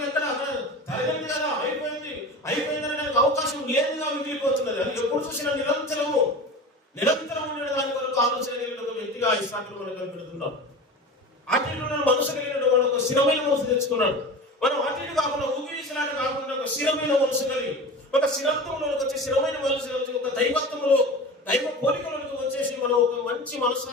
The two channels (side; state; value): both; normal; correlation 0.33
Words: అక్కడ తరగంది కదా, అయిపోయిందని నాకు అవకాశం లేదుగా మిగిలిపోతున్నది. అది ఎప్పుడు చూసినా నిరంతరం ఉండే దాని కొరకు ఆలోచన కలిగిన ఒక వ్యక్తిగా ఈ సాకులు మనం కనిపెడుతున్నాం. అటు మనసు కలిగిన వాడు ఒక స్థిరమైన మనసు తెచ్చుకున్నాడు. మనం అటు కాకుండా ఊగిసలాట కాకుండా ఒక స్థిరమైన మనసు కలిగి, ఒక స్థిరత్వంలోకి వచ్చి, స్థిరమైన మనసు ఒక దైవత్వంలో, దైవ పోలికలోకి వచ్చేసి మనం మంచి